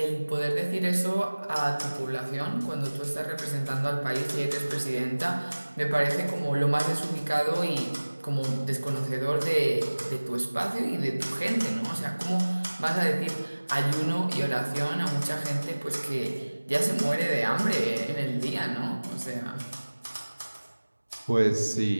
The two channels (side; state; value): both; inverted; correlation -1.00